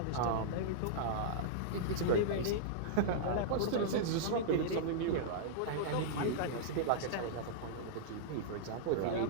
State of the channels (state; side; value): different; both; correlation -0.03